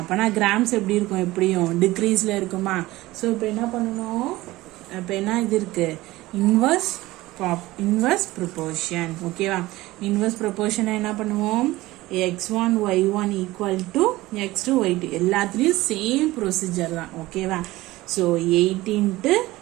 கிராம்ஸ் எப்படி இருக்கும்? எப்படியும் டிக்ரீஸ்ல இருக்குமா? ஸோ இப்போ என்ன பண்ணணும்? இப்போ என்ன இது இருக்கு? Inverse proportion. ஓகேவா? இன்வர்ஸ் ப்ரொபோர்ஷனை என்ன பண்ணுவோம்? x1 y1 equal to x2 y2. எல்லாத்துலேயும் சேம் ப்ரொசீஜர் தான். ஓகேவா? So 8 into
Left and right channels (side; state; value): left; quieter; 18.4 dB